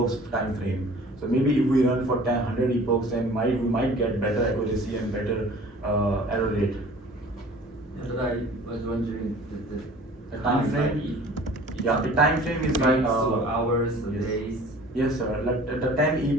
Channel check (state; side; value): normal; both; correlation 0.47